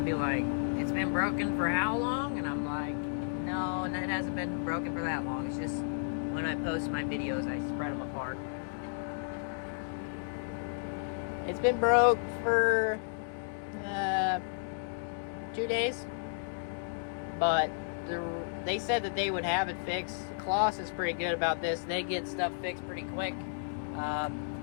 be like, it's been broken for how long? And I'm like, no, it hasn't been broken for that long. It's just when I post my videos, I spread them apart. It's been broke for 2 days, but they said that they would have it fixed. Kloss is pretty good about this. They get stuff fixed pretty quick,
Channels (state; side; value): silent; right; digital silence